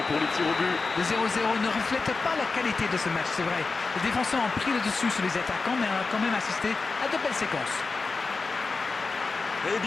pour les tirs au but. Le 0-0 ne reflète pas la qualité de ce match, c'est vrai. Les défenseurs ont pris le dessus sur les attaquants, mais on a quand même assisté à de belles séquences. Eh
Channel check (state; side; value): quieter; right; 4.1 dB